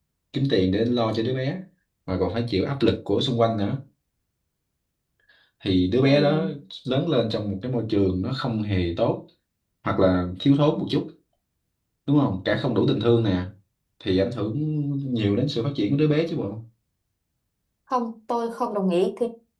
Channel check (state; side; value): identical; both; correlation 1.00